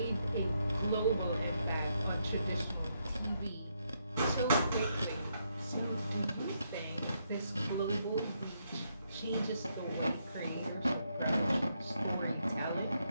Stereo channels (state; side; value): inverted; both; correlation -0.78